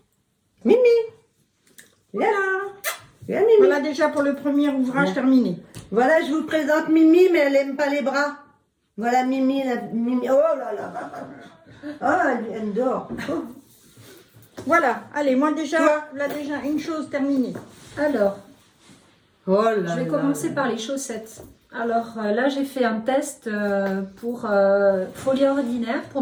Mimi. Voilà. Viens, Mimi. Voilà déjà pour le premier ouvrage Ouais. terminé. Voilà, je vous présente Mimi, mais elle aime pas les bras. Voilà Mimi, Mimi. Oh là là. Ah, elle dort. Oh. Voilà. Allez, moi déjà, Quoi? là déjà une chose terminée. Alors, Oh là je vais là commencer là. par les chaussettes. Alors là, j'ai fait un test pour Folie Ordinaire, pour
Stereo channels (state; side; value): identical; both; correlation 1.00